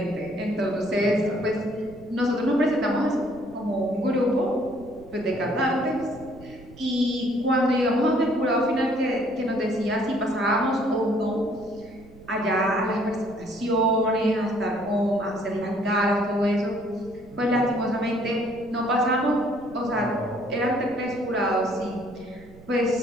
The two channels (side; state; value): right; noise; rumble, 21 dB below the sound